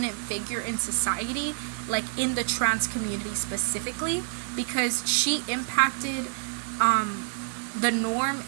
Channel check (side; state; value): left; silent; 60 dB below the other